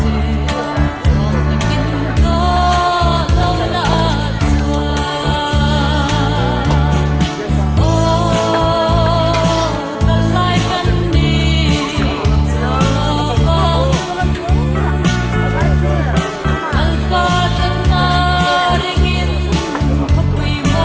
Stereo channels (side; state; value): both; identical; correlation 1.00